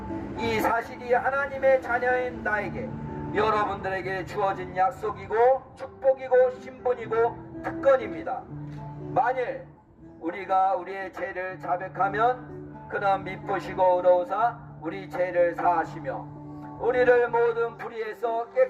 이 사실이 하나님의 자녀인 나에게, 여러분들에게 주어진 약속이고 축복이고 신분이고 특권입니다. 만일 우리가 우리의 죄를 자백하면 그는 미쁘시고 의로우사 우리 죄를 사하시며 우리를 모든 불의에서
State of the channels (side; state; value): both; identical; correlation 1.00